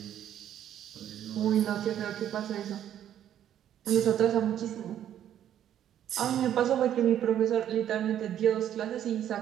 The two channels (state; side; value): quieter; left; 10.7 dB